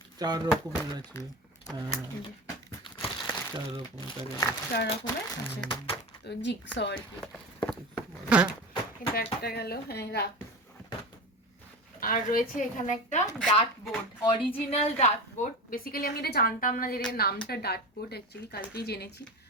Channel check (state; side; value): normal; both; correlation 0.26